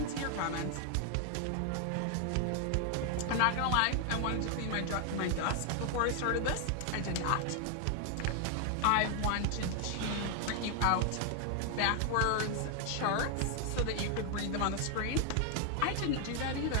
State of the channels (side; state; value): both; different; correlation 0.00